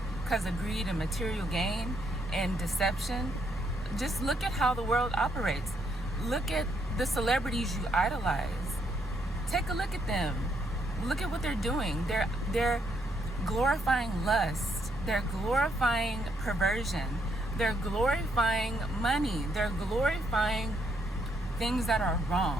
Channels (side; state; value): both; normal; correlation 0.74